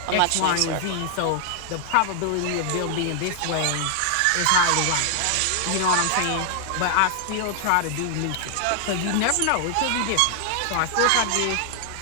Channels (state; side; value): different; both; correlation -0.01